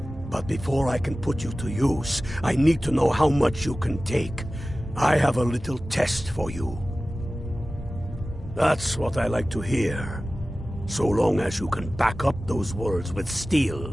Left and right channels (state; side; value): normal; both; correlation 0.96